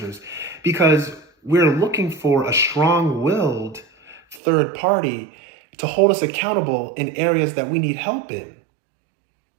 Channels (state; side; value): drops out; left; at 4.4 s